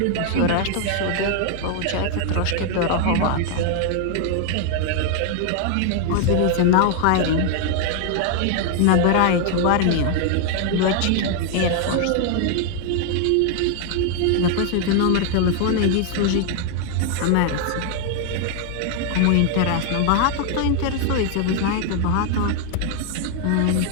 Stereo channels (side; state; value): both; different; correlation 0.00